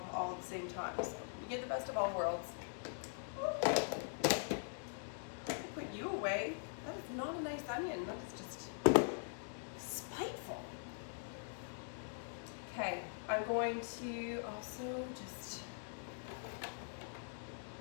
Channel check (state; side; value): silent; right; digital silence